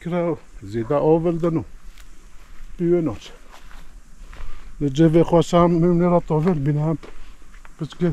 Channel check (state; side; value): identical; both; correlation 1.00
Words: زیده آوردنو بیوناش جوه خواسته هم میمونه را تاول بینه هم بس